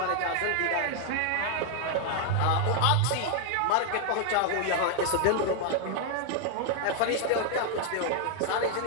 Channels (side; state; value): both; different; correlation 0.00